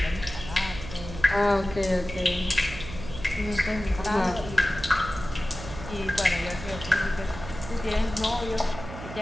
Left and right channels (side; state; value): right; noise; hum, 11 dB below the sound